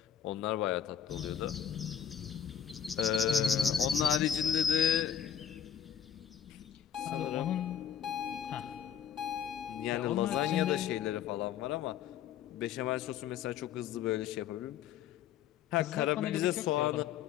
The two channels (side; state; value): right; quieter; 8.8 dB